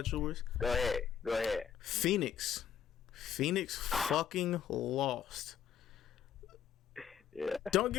yours. Go ahead. Phoenix fucking lost. Yeah. Don't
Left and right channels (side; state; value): right; quieter; 8.7 dB